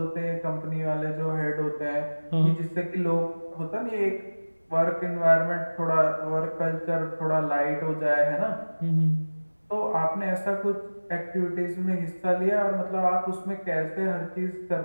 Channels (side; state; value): both; inverted; correlation -1.00